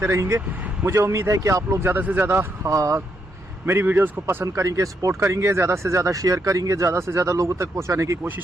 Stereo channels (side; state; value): both; normal; correlation 0.78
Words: रहेंगे। मुझे उम्मीद है कि आप लोग ज़्यादा से ज़्यादा मेरी वीडियोस को पसंद करेंगे, सपोर्ट करेंगे, ज़्यादा से ज़्यादा शेयर करेंगे, ज़्यादा से ज़्यादा लोगों तक पहुंचाने की